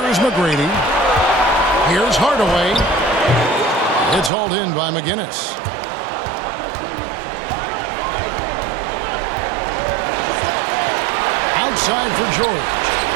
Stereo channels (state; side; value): drops out; left; at 4.3 s